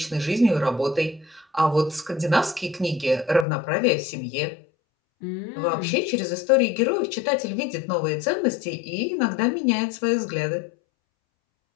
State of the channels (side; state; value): right; drops out; at 3.5 s